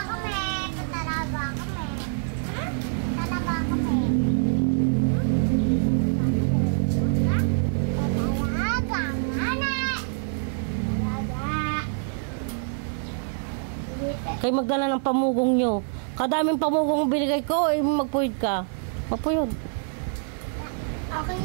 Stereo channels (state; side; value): silent; left; digital silence